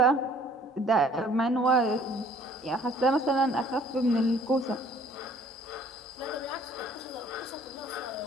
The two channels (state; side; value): normal; both; correlation 0.56